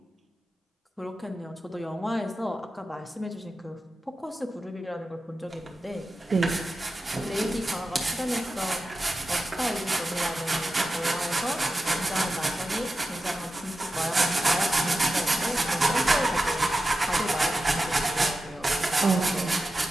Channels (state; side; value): normal; both; correlation 0.92